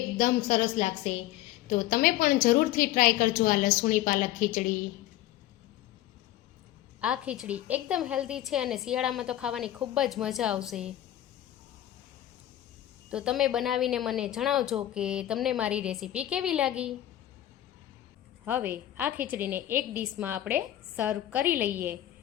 સરસ લાગશે. તો તમે પણ જરૂરથી ટ્રાય કરજો આ લસુણી પાલક ખીચડી. આ ખીચડી એકદમ હેલ્ધી છે અને શિયાળામાં તો ખાવાની ખૂબ જ મજા આવશે. તો તમે બનાવીને મને જણાવજો કે તમને મારી રેસીપી કેવી લાગી. હવે આ ખીચડીને એક ડીશમાં આપણે સર્વ કરી લઈએ.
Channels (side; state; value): right; quieter; 13.5 dB